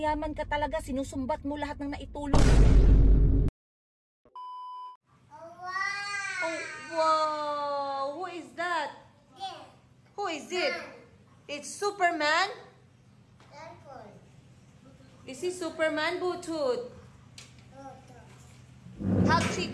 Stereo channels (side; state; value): both; identical; correlation 1.00